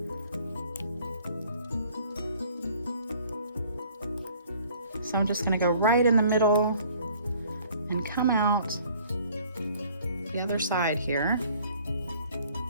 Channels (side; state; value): both; inverted; correlation -0.56